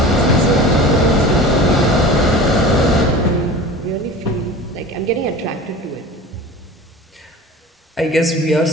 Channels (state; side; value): normal; both; correlation 0.37